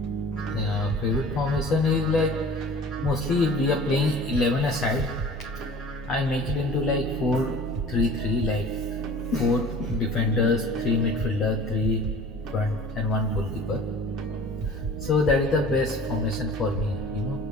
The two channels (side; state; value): both; normal; correlation 0.44